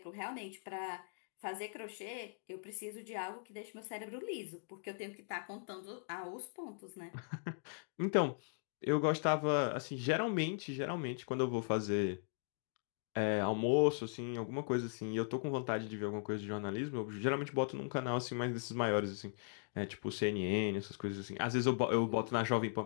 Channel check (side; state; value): right; silent; digital silence